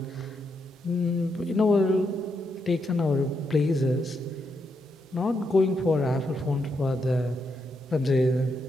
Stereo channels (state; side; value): normal; both; correlation 0.81